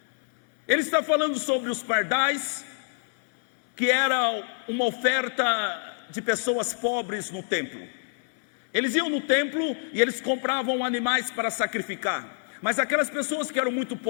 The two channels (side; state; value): right; silent; 61 dB below the other